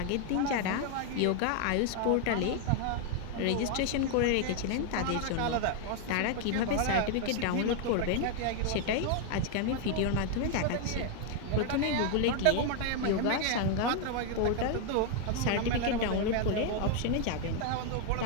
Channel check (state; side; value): different; both; correlation 0.00